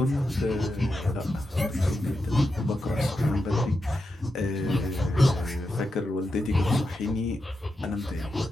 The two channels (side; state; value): both; normal; correlation 0.87